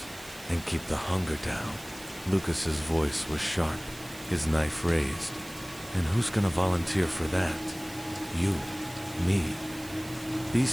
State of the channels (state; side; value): noise; right; hiss, 17 dB below the sound